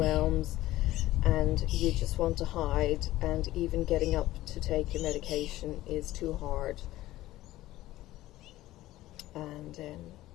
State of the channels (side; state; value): right; quieter; 16.0 dB